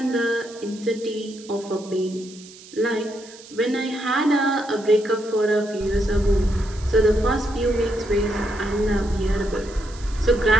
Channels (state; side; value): noise; right; hiss, 20 dB below the sound